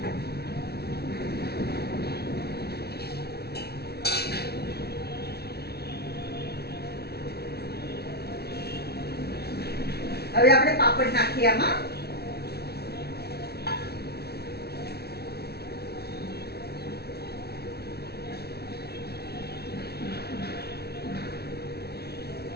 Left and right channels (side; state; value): right; late; 0.46 ms